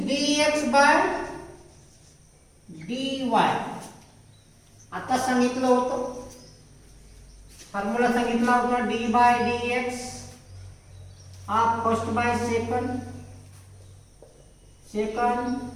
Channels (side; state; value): both; identical; correlation 1.00